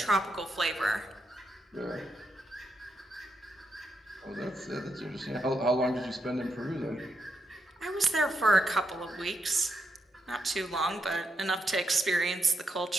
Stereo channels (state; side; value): normal; both; correlation 0.83